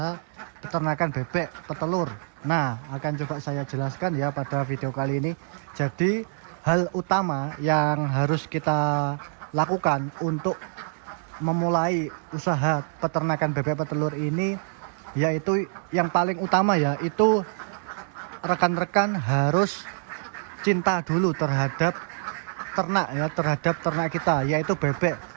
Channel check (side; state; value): left; silent; digital silence